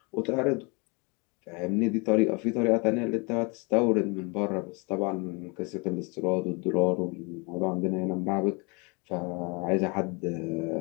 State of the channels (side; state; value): right; quieter; 30.5 dB